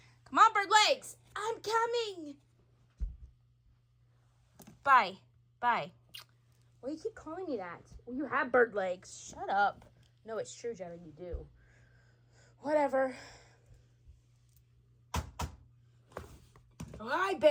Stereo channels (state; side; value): identical; both; correlation 1.00